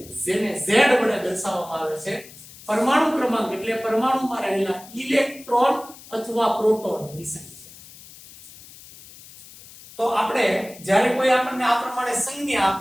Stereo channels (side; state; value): left; noise; hiss, 19 dB below the sound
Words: જેને Z વડે દર્શાવવામાં આવે છે, પરમાણુ ક્રમાંક એટલે પરમાણુમાં રહેલા ઇલેક્ટ્રોન અથવા પ્રોટોનની સંખ્યા. તો આપણે જ્યારે કોઈ આપણને આ પ્રમાણે સંજ્ઞા